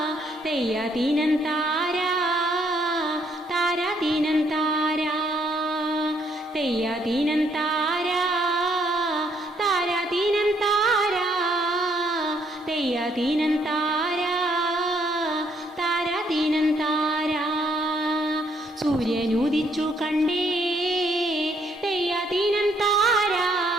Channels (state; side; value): normal; both; correlation 0.70